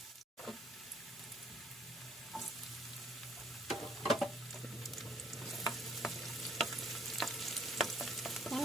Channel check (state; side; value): normal; both; correlation 0.62